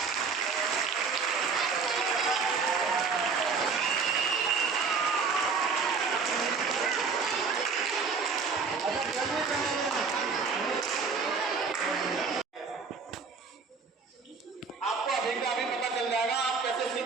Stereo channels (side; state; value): left; quieter; 5.1 dB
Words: आपको अभी का अभी पता चल जाएगा आप कैसे